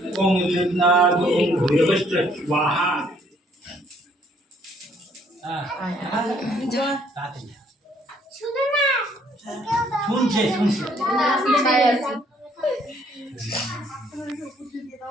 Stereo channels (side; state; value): both; normal; correlation 0.65